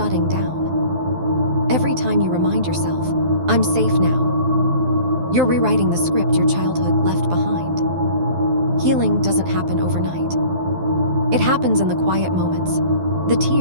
down. Every time you remind yourself, I'm safe now. You're rewriting the script your childhood left behind. Healing doesn't happen overnight. It happens in the quiet moments, the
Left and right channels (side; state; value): left; late; 12 ms